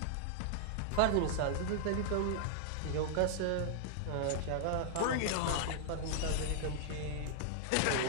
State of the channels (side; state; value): both; different; correlation -0.01